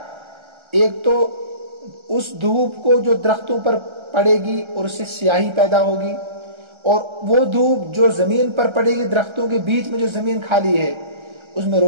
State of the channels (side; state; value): left; late; 1.3 ms